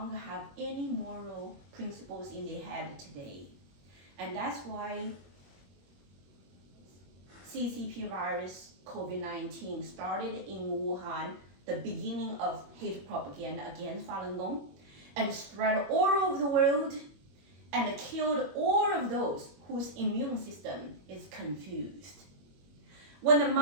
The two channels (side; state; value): left; late; 21 ms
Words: have any moral principles in their head today. And that's why CCP virus COVID-19 started in Wuhan, the beginning of hate propaganda against Falun Gong, and spread all over the world and killed all of those whose immune system is confused. When the